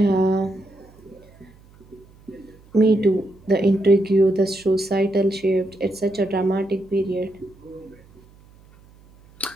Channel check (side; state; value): right; noise; hum, 27 dB below the sound